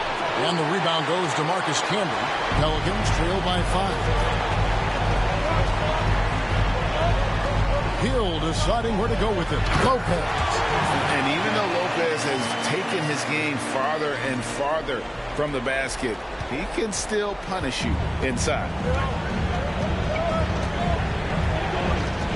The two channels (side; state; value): both; identical; correlation 1.00